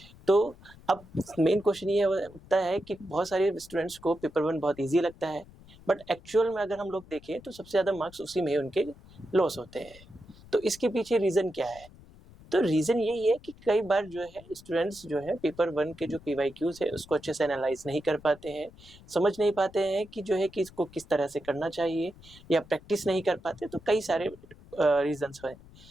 तो अब मेन क्वेश्चन ये उठता है कि बहुत सारे स्टूडेंट्स को पेपर 1 बहुत इजी लगता है, बट एक्चुअल में अगर हम लोग देखें तो सबसे ज़्यादा मार्क्स उसी में उनके लॉस होते हैं। तो इसके पीछे रीज़न क्या है? तो रीज़न यही है कि कई बार जो है स्टूडेंट्स जो है पेपर 1 के जो पीवाईक्यूज है उसको अच्छे से एनालाइज नहीं कर पाते हैं, समझ नहीं पाते हैं कि जो है कि इसको किस तरह से करना चाहिए, या प्रैक्टिस नहीं कर पाते। तो कई सारे रीजंस हैं।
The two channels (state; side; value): noise; left; rumble, 22 dB below the sound